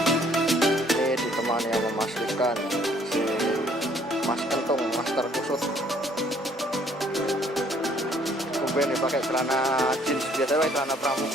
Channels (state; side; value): normal; both; correlation 0.62